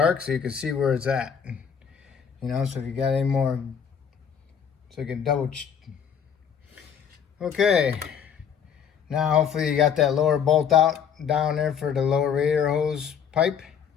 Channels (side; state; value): right; quieter; 7.6 dB